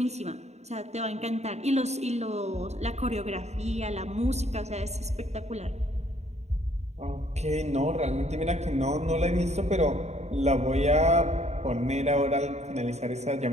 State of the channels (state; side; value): late; left; 0.32 ms